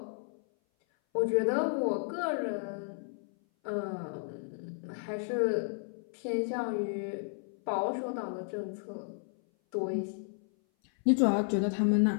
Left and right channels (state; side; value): silent; right; 56 dB below the other